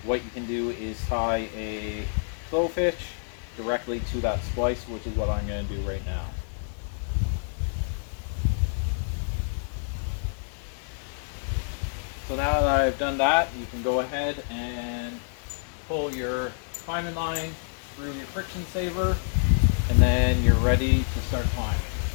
what you can do is tie a clove hitch directly to that splice, which is what I'm going to do right now. So now that I've done that, you can go ahead and pull your climbing line through your friction saver, and then you're ready to start climbing.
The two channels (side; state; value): right; silent; digital silence